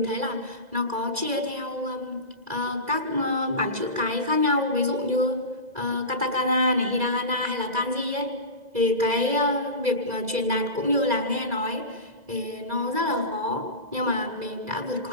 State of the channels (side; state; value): left; late; 2.0 ms